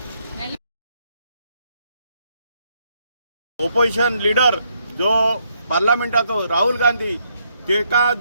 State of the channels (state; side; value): inverted; both; correlation -0.74